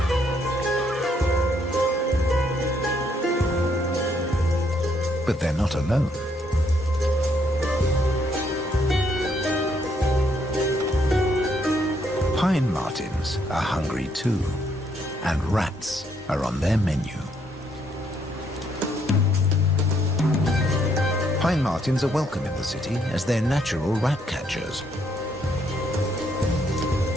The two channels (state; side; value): normal; both; correlation 0.72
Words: But they're not alone. Pine martins are hungry too, and rats are on their menu. Pine martins are welcome in the city as they're natural rat catchers.